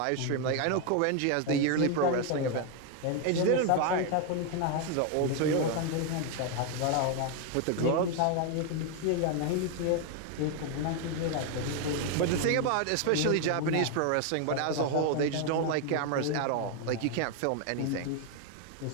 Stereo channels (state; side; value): different; both; correlation 0.01